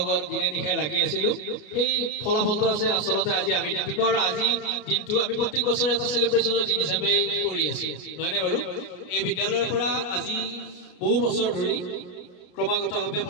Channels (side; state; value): right; late; 33 ms